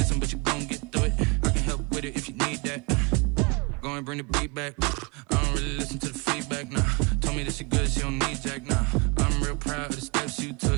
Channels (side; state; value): left; quieter; 29.8 dB